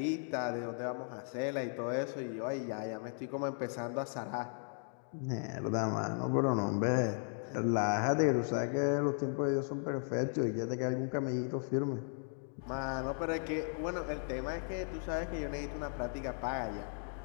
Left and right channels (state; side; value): silent; right; 54 dB below the other